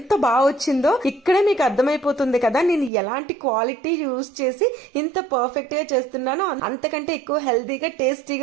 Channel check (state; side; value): drops out; left; at 2.9 s